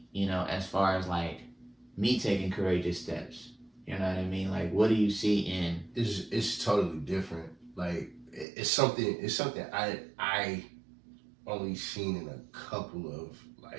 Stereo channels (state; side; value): drops out; left; at 8.5 s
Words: you know, as far as, like, me taking courageous steps? You know what I mean? Like, what do you see in? It's totally different. Like, it's something I only seen in a couple of,